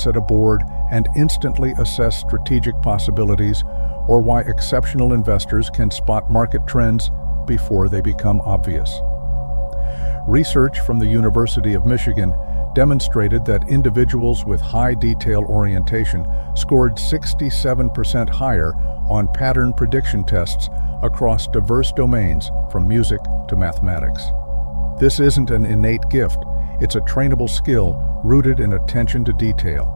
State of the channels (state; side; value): inverted; both; correlation -1.00